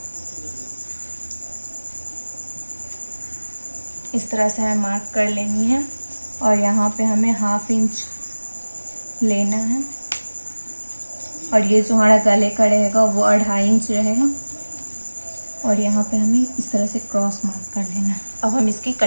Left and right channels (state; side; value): inverted; both; correlation -1.00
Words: इस तरह से हमें मार्क कर लेनी है। और यहाँ पे हमें 1/2 इंच लेना है। और ये जो हमारा गले का रहेगा वो 2.5 इंच रहेगा। और यहाँ पे हमें इस तरह से क्रॉस मार्क कर लेना है। अब हम इसकी